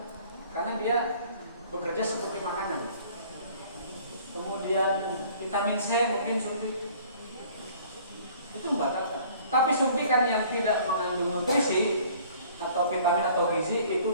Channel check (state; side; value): inverted; both; correlation -0.53